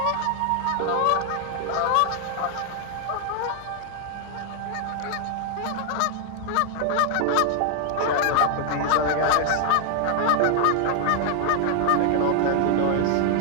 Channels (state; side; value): different; both; correlation 0.00